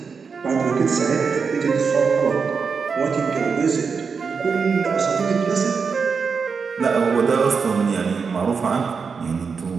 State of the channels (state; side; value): quieter; left; 5.5 dB